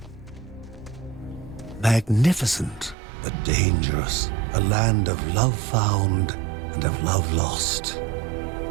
Magnificent, but dangerous, a land of love found and of love lost.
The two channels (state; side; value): drops out; left; at 3.0 s